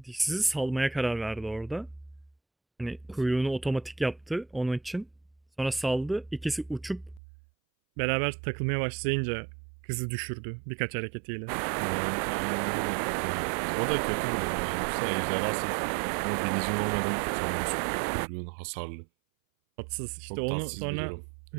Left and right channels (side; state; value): left; drops out; at 7.2 s